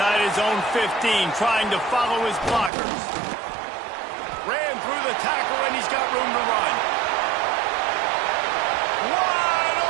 his own 15, trying to follow his blockers. Ran through the tackle, and he's got room to run. Wide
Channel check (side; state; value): left; drops out; at 2.7 s